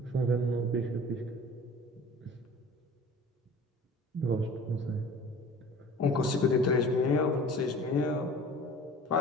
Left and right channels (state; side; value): normal; both; correlation 0.43